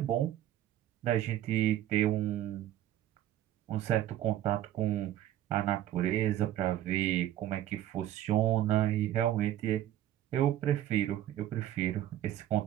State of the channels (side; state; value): left; quieter; 12.5 dB